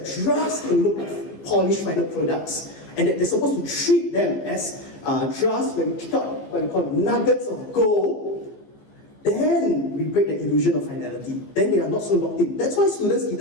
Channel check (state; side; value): late; right; 15 ms